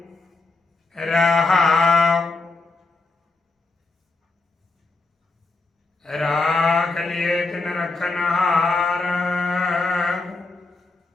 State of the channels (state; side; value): quieter; right; 3.5 dB